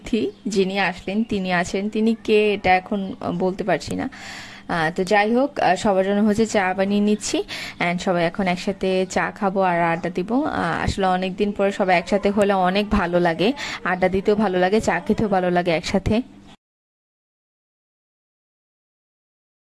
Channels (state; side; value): identical; both; correlation 1.00